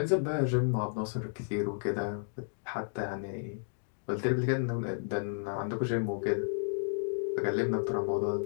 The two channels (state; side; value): silent; right; digital silence